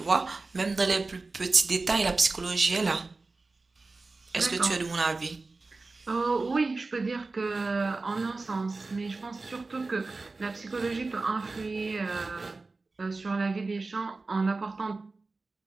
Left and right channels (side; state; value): left; quieter; 3.6 dB